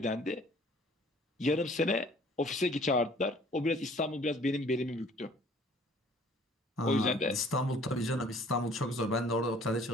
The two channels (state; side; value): normal; both; correlation 0.55